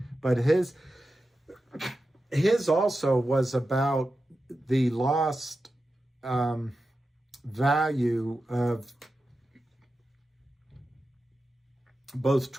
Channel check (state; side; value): normal; both; correlation 0.91